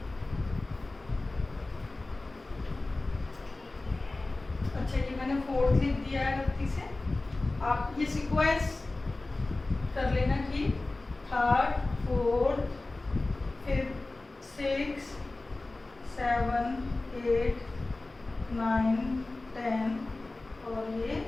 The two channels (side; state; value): right; quieter; 3.1 dB